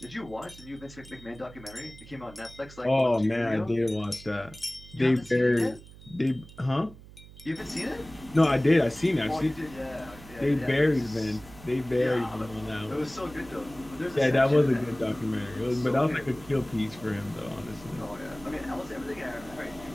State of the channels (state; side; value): noise; right; hum, 19 dB below the sound